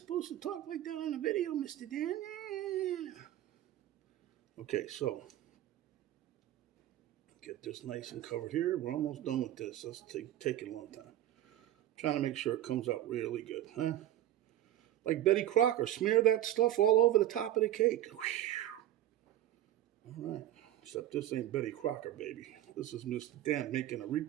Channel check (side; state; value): left; quieter; 13.3 dB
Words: to talk like that on the video, Mr. Dan. Okay, so get this nice and covered here. We're almost done with this. That's taking a long time. I'm trying to make sure it comes out really good, huh? Like Betty Crocker, smear that stuff all over the top of the cake. All right, except this ain't Betty Crocker, baby. This is Mr. Dan making a